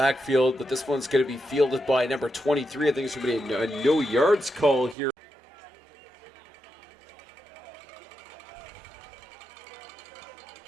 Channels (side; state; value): left; drops out; at 5.0 s